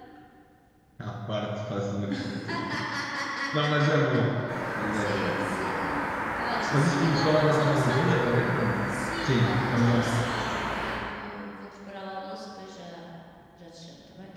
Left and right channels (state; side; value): identical; both; correlation 1.00